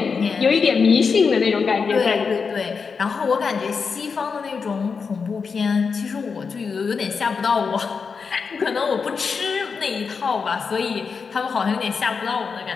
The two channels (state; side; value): quieter; right; 5.4 dB